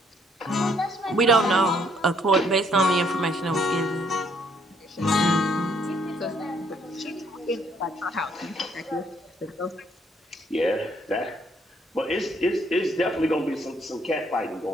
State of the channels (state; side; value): normal; both; correlation 0.67